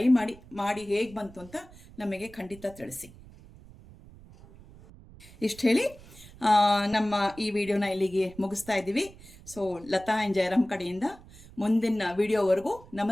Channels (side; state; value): right; noise; rumble, 21 dB below the sound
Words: ಮಾಡಿ ಹೇಗೆ ಬಂತು ಅಂತ ನಮಗೆ ಖಂಡಿತ ತಿಳಿಸಿ. ಇಷ್ಟು ಹೇಳಿ ನಮ್ಮ ಈ ವಿಡಿಯೋನ ಇಲ್ಲಿಗೆ ಮುಗಿಸ್ತಾ ಇದ್ದೀವಿ. ಸೊ ಲತಾ ಆ್ಯಂಡ್ ಜಯರಾಮ್ ಕಡೆಯಿಂದ ಮುಂದಿನ ವಿಡಿಯೋವರೆಗೂ